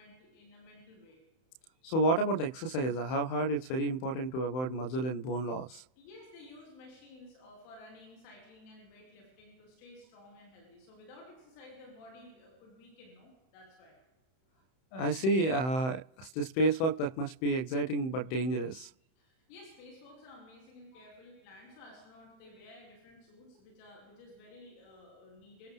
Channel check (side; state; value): right; late; 31 ms